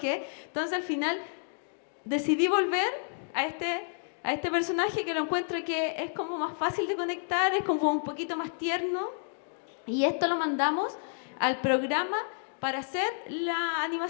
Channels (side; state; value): right; silent; digital silence